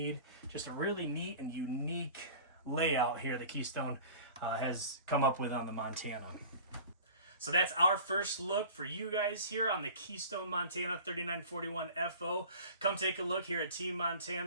Just a really neat and unique layout here that Keystone has come up with on the Montana. So that's our first look for you guys here on the Keystone Montana 3941 FO. Come take a look here at Team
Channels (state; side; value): inverted; both; correlation -0.41